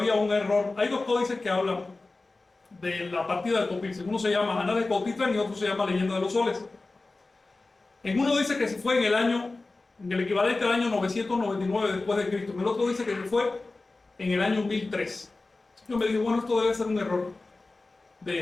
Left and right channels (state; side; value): quieter; right; 3.4 dB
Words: un error. Hay 2 códices que hablan de la partida de Popilsin. Uno se llama Anales de Cotitlán y otro se llama Leyenda de los Soles. En uno dice que se fue en el equivalente al año 999 después de Cristo. En el otro dice que se fue en el año 1003. Yo me digo, bueno, esto debe ser un error